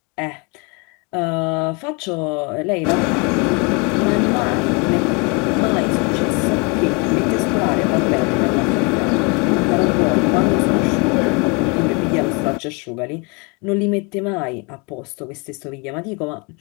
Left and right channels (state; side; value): quieter; right; 31.2 dB